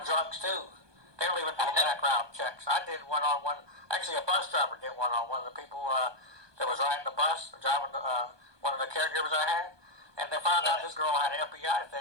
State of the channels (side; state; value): left; late; 1.2 ms